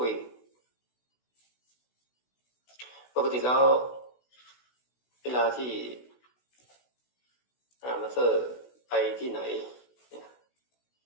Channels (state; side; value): late; right; 16 ms